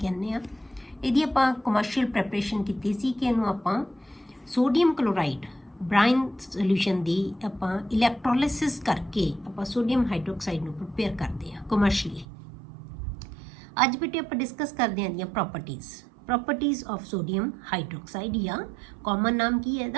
ਆ। ਇਹਦੀ ਆਪਾਂ ਕਮਰਸ਼ੀਅਲ ਪ੍ਰੈਪਰੇਸ਼ਨ ਕੀਤੀ ਸੀ ਕਿ ਇਹਨੂੰ ਆਪਾਂ ਸੋਡੀਅਮ ਕਲੋਰਾਈਡ ਬ੍ਰਾਈਨ ਸੋਲੂਸ਼ਨ ਦੀ ਆਪਾਂ ਇਲੈਕਟ੍ਰੋਲਿਸਿਸ ਕਰਕੇ ਆਪਾਂ ਸੋਡੀਅਮ ਹਾਈਡਰੋਕਸਾਈਡ ਨੂੰ ਪ੍ਰਪੇਅਰ ਕਰਦੇ ਆ ਕਮਰਸ਼ੀਅਲੀ। ਅੱਜ ਬੇਟੇ ਆਪਾਂ ਡਿਸਕਸ ਕਰਦੇ ਆਂ ਦੀਆਂ ਪ੍ਰੋਪਰਟੀਜ਼ ਆਫ ਸੋਡੀਅਮ ਹਾਈਡਰੋਕਸਾਈਡ ਜਾਂ ਕਾਮਨ ਨਾਮ ਕੀ ਹੈ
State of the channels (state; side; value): drops out; left; at 12.2 s